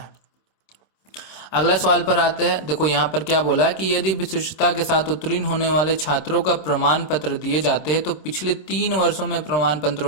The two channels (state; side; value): late; right; 26 ms